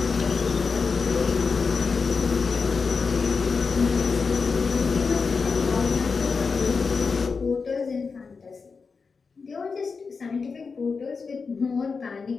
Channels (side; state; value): right; quieter; 4.9 dB